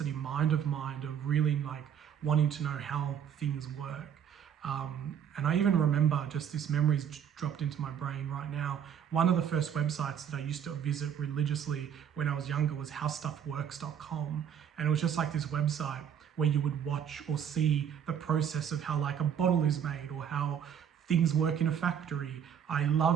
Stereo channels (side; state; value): left; quieter; 8.7 dB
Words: mind of mine of really like wanting to know how things work. And I even remember, just this memory's dropped into my brain right now, one of the first websites that I used to visit religiously when I was younger was howstuffworks.com. And it was just like this website where you would watch or see the process of how like a bottle is made or how things work in a factory. I